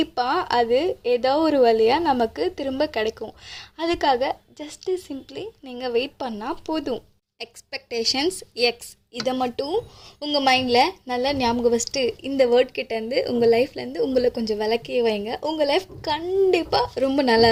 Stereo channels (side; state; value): both; identical; correlation 1.00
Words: அது ஏதோ ஒரு வழியாக நமக்கு திரும்ப கிடைக்கும். அதுக்காக ஜஸ்ட்டு சிம்ப்ளி நீங்கள் வெயிட் பண்ணால் போதும். எக்ஸ்பெக்டேஷன்ஸ் எக்ஸ், இதை மட்டும் உங்கள் மைண்டில் நல்லா ஞாபகம் வச்சுட்டு இந்த வேர்ட் கிட்டேருந்து உங்கள் லைஃப்லேருந்து உங்களை கொஞ்சம் விளக்கியே வைங்க. உங்கள் லைஃப் கண்டிப்பாக ரொம்ப